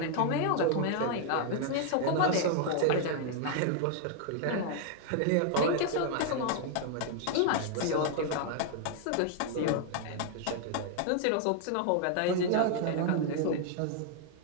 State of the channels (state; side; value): different; both; correlation 0.00